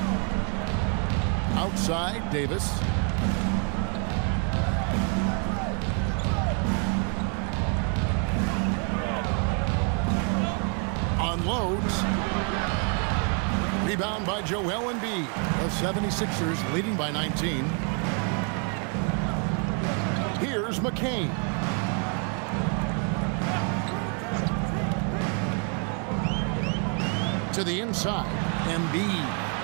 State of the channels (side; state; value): left; quieter; 39.6 dB